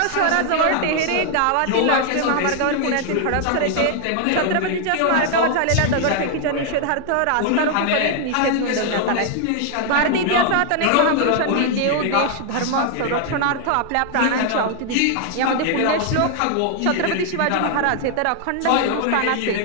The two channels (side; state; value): both; different; correlation 0.00